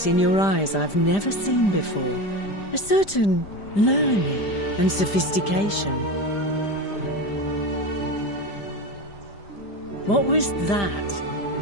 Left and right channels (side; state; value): right; late; 5.0 ms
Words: in your eyes I've never seen before, a certain learning and sophistication. What was that?